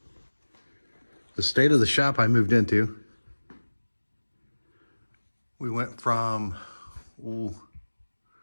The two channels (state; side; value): inverted; both; correlation -1.00